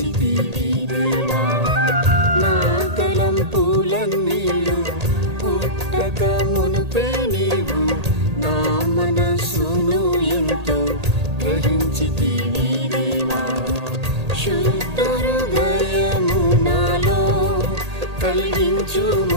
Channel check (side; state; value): left; late; 1.8 ms